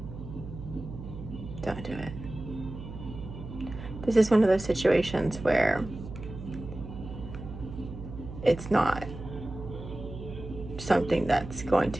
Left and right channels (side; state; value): right; noise; hum, 11 dB below the sound